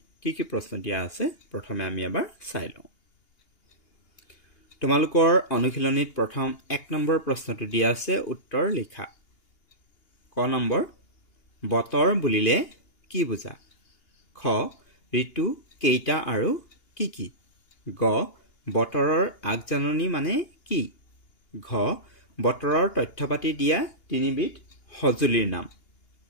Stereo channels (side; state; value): right; late; 2.8 ms